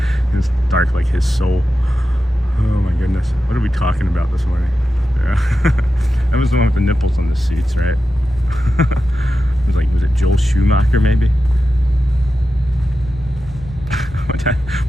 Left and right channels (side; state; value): both; normal; correlation 0.91